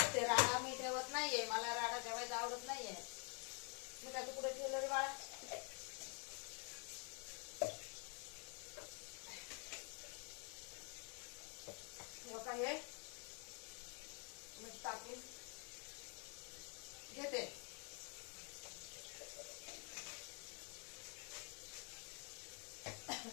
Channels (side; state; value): right; quieter; 37.8 dB